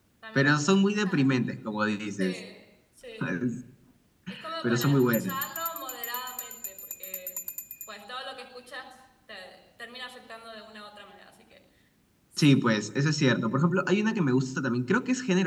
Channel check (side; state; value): both; identical; correlation 1.00